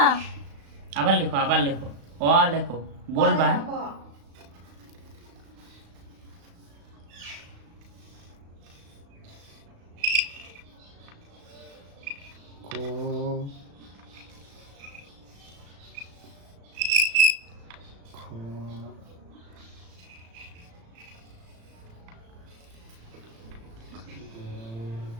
আবার লেখো অ লেখো বলবা। ক খ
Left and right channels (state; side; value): late; left; 35 ms